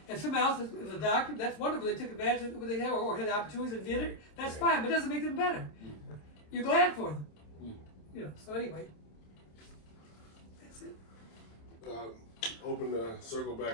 And someone else is a doctor. That's wonderful. They took advantage of what they had or had opportunities and did it. That's fine, but it doesn't make them better. You're glad for them. You know. So anyway, that's it. Open the circle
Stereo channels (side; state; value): right; late; 27 ms